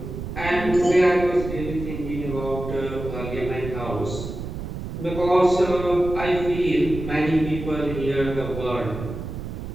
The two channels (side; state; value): right; noise; rumble, 7 dB below the sound